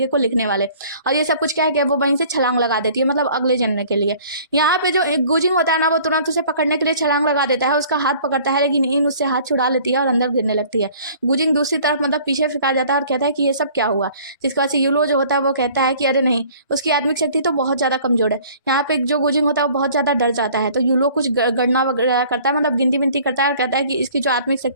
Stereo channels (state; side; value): inverted; both; correlation -0.52